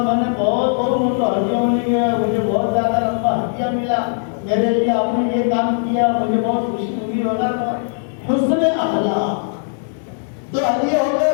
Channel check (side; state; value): right; silent; digital silence